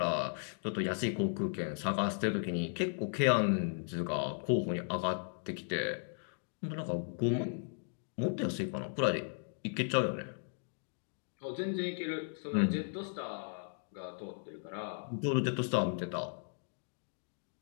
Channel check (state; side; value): silent; right; digital silence